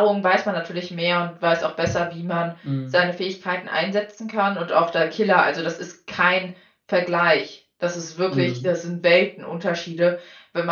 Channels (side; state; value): both; identical; correlation 1.00